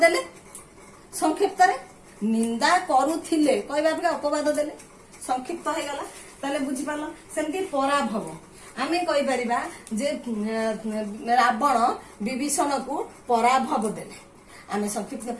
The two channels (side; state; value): both; identical; correlation 1.00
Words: देले संक्षिप्त रे निंदा करुथिले कहबा अपवाद देले संक्षिप्त हे गला। ताले बुझि पालो सेमति पराभव आमे कहि परिबा जे रावण विभीषण को पराभव देले। आमे संक्षिप्त